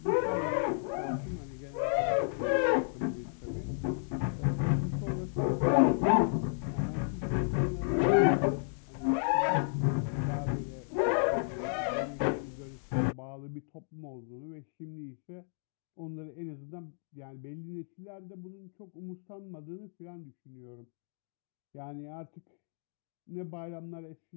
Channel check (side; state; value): right; silent; digital silence